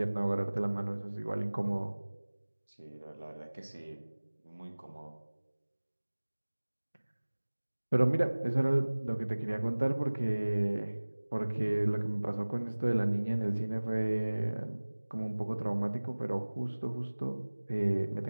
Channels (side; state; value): both; inverted; correlation -1.00